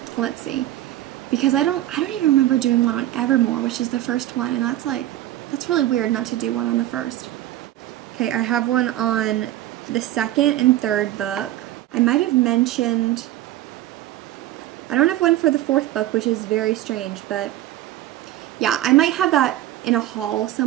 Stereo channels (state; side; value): quieter; left; 14.3 dB